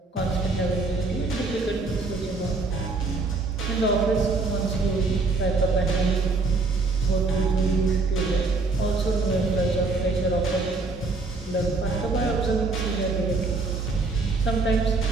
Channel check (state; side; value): quieter; left; 3.7 dB